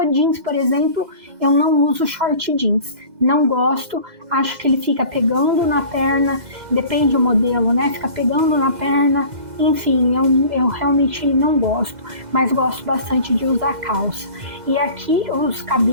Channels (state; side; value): late; left; 2.0 ms